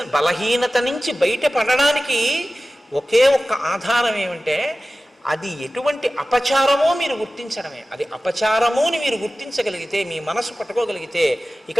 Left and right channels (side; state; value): both; normal; correlation 0.96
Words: బలహీనత నుంచి బయటపడడానికి ఒకే ఒక్క ఆధారం ఏమంటే అది ఎటువంటి అపచారమో మీరు గుర్తించడమే. అది అపచారము అని మీరు గుర్తించగలిగితే, మీ మనసు పట్టుకోగలిగితే ఇక